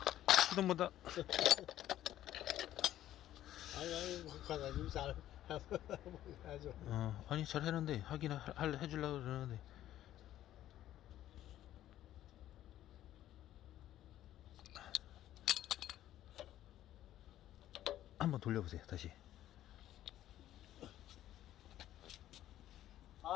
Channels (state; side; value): quieter; right; 12.9 dB